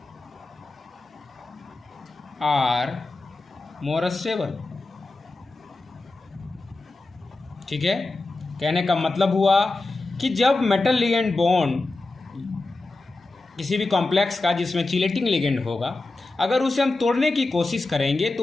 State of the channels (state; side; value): quieter; right; 3.3 dB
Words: are more stable. ठीक है, कहने का मतलब हुआ कि जब मेटल लिगेंड बॉन्ड किसी भी कॉम्प्लेक्स का जिसमें चिलेटिंग लिगेंड होगा अगर उसे हम तोड़ने की कोशिश करेंगे